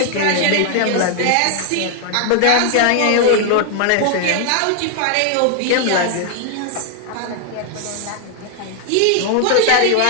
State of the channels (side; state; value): both; different; correlation 0.00